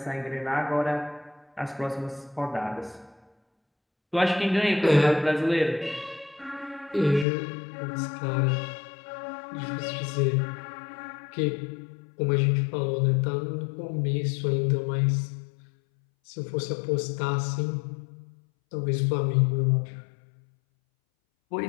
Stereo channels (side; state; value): right; drops out; at 7.2 s